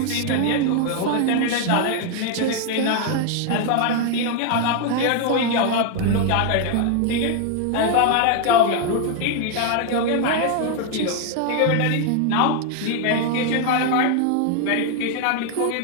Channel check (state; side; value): different; both; correlation 0.01